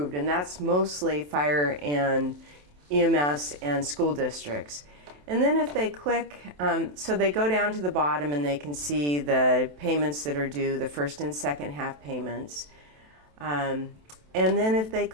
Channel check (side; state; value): left; late; 27 ms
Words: and that's mostly fire and EMS and school districts. And then if they click, so they go down to the bottom and they can see the payments that are due, the first and second half payments. And then if they